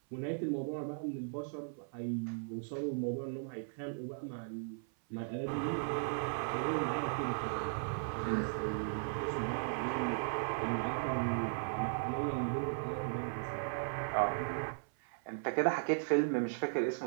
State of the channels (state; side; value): silent; left; 53 dB below the other